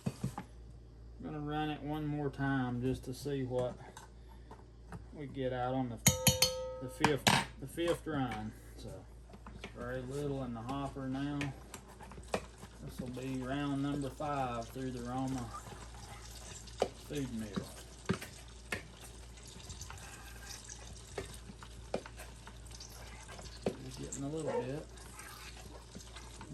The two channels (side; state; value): both; identical; correlation 1.00